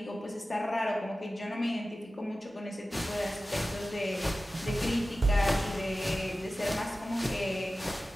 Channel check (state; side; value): normal; both; correlation 0.95